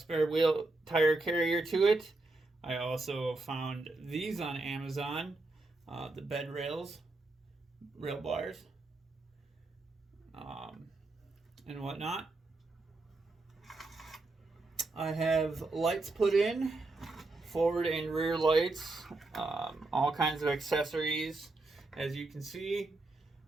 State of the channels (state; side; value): quieter; left; 3.2 dB